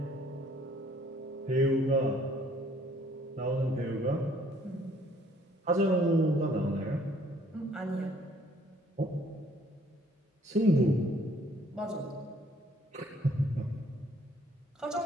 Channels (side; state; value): both; normal; correlation 0.61